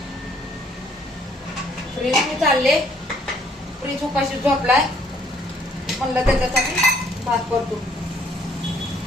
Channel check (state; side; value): normal; both; correlation 0.64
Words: फ्रीज चालले, फ्रीज उपाशी झोपलाय. म्हणलं त्याच्यासाठी भात परतून.